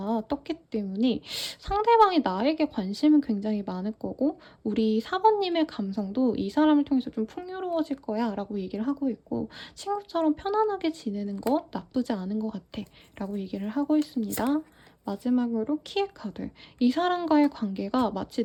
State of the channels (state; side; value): identical; both; correlation 1.00